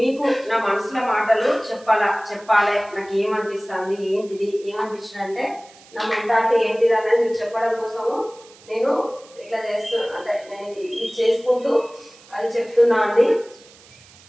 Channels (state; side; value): noise; right; hiss, 24 dB below the sound